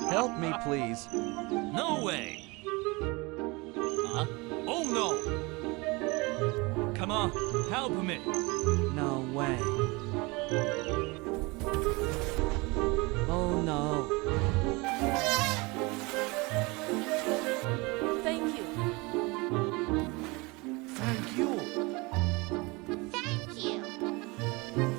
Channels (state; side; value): quieter; left; 25.7 dB